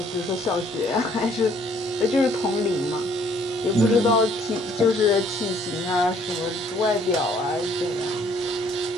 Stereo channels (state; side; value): normal; both; correlation 0.62